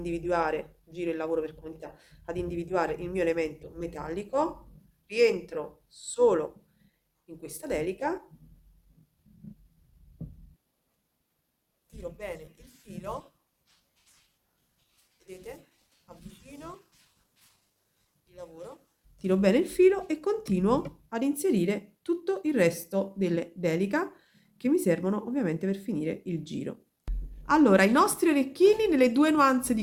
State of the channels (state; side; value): identical; both; correlation 1.00